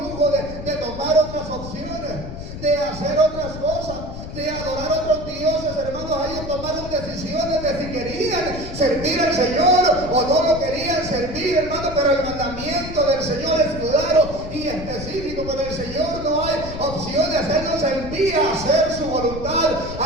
de tomar otras opciones, de hacer otras cosas, de adorar a otros dioses, hermanos. Ellos tomaron decisiones de si querían servir al Señor o no lo querían servir, hermano, pero el mandamiento del Señor es claro y específico. Con el Señor no hay opciones. Él nos envía a hacer su voluntad,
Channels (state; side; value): noise; left; rumble, 9 dB below the sound